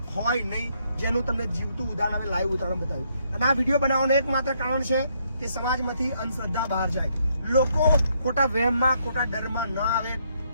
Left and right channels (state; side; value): inverted; both; correlation -0.73